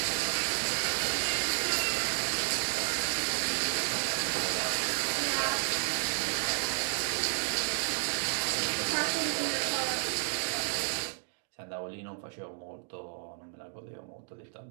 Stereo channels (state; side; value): silent; left; digital silence